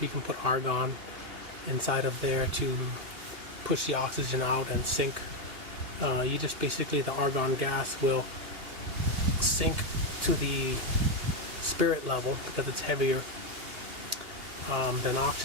can put argon inside of there to push the oxygen out and sink. You just basically, the argon gas will sink to the spirit level because it's heavier than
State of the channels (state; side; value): late; left; 2.8 ms